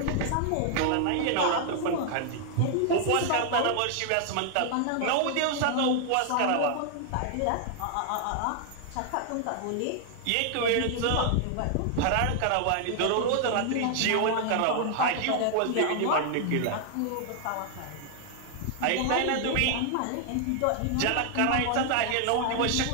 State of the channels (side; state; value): both; different; correlation 0.00